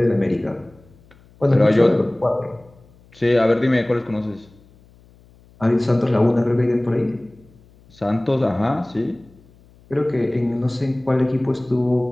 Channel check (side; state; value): left; noise; hum, 28 dB below the sound